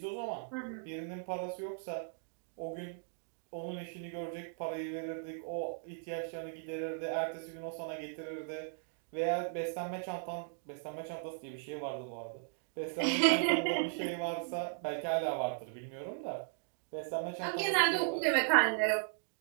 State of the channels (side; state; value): left; silent; digital silence